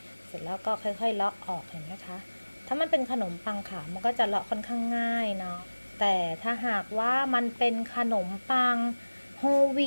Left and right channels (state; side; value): inverted; both; correlation -1.00